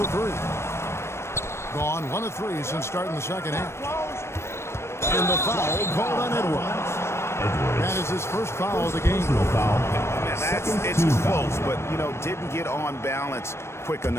the 3. Gone 1 of 3 since starting the second half. And the foul called on Edwards. That is his first foul of the game. It's close, but, you know, didn't get on balance quick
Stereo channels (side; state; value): right; late; 0.13 ms